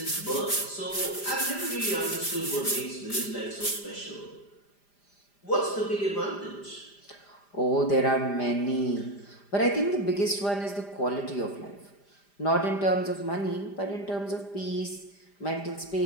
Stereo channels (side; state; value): right; late; 5.0 ms